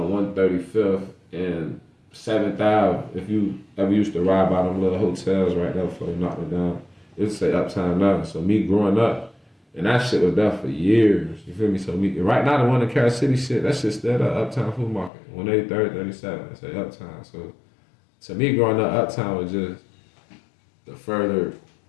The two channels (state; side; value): drops out; right; at 15.1 s